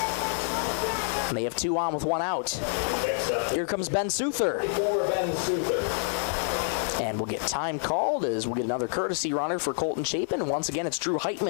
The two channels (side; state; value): right; silent; 60 dB below the other